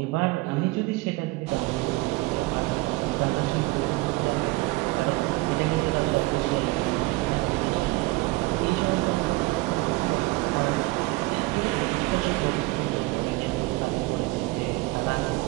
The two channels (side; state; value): left; quieter; 21.9 dB